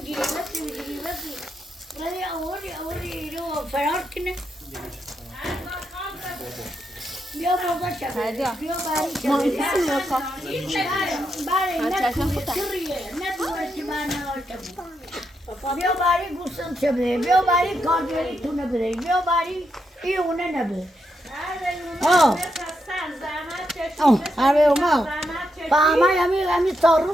بسی ولی اولی ایرو فرار کنه بیا بابا شد بیا باری شد باری نکویه ندوه که من نواشتم بیا باری گوستم چه بده بیا باری کاردوری تو نبده بیا باری ایونه نبده آره اوما فهمه همی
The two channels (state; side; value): normal; both; correlation 0.82